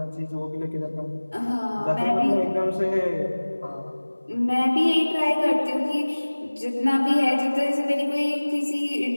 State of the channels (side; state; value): both; inverted; correlation -1.00